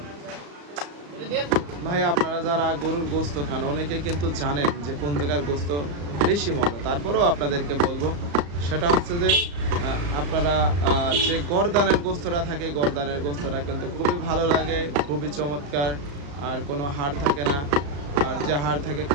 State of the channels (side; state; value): left; late; 35 ms